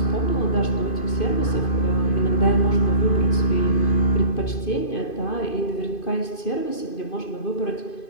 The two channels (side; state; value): right; late; 2.5 ms